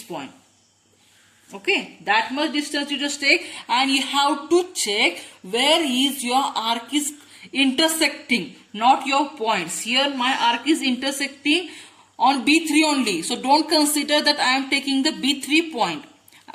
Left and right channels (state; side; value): identical; both; correlation 1.00